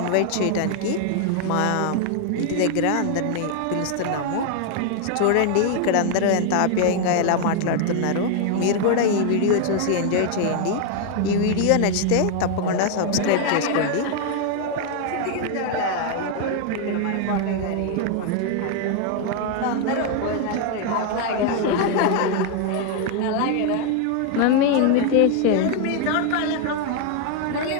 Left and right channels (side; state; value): both; different; correlation 0.00